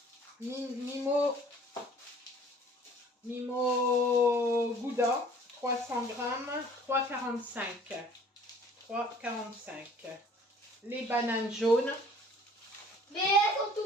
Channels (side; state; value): both; normal; correlation 0.52